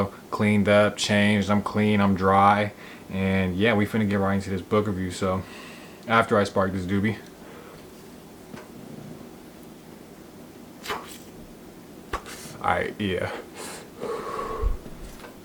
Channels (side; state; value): both; identical; correlation 1.00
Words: Cleaned up, changed. I'm clean, I'm dry. And yeah, we finna get right into this book review. So after I spark this doobie. Alright, yeah.